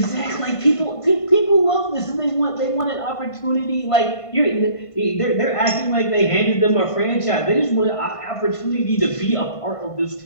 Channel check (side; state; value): right; late; 1.5 ms